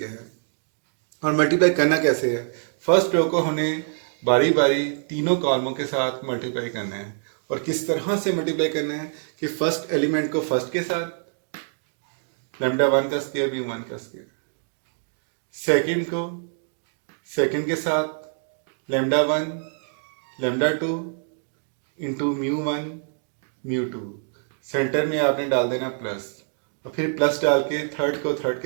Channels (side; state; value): left; silent; digital silence